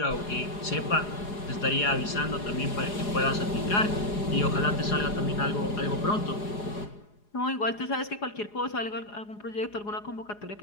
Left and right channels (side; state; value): right; late; 4.8 ms